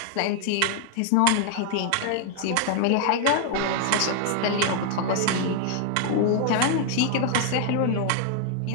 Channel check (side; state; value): both; different; correlation 0.00